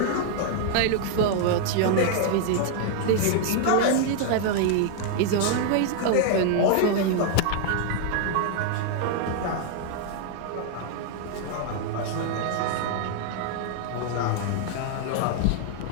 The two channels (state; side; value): different; both; correlation 0.00